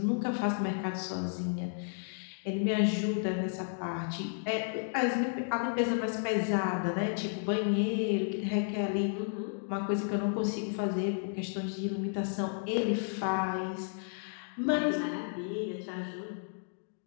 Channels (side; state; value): right; silent; digital silence